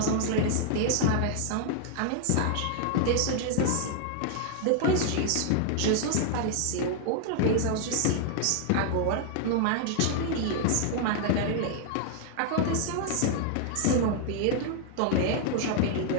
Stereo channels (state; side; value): different; both; correlation 0.00